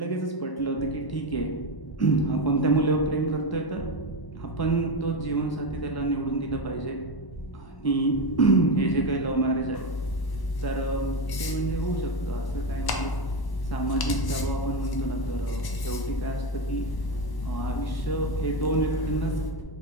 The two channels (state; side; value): late; right; 1.1 ms